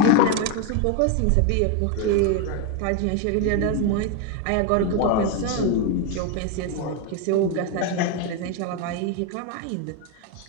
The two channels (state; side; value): different; both; correlation 0.02